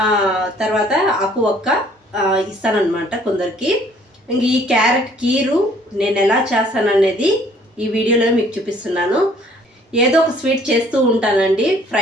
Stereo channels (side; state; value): both; normal; correlation 0.59